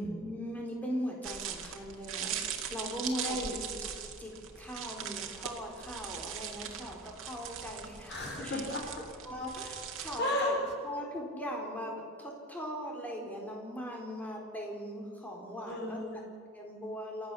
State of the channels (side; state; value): both; normal; correlation 0.36